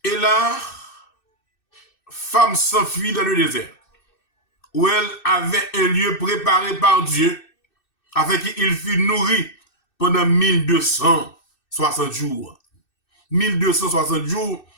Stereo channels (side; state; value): right; late; 2.6 ms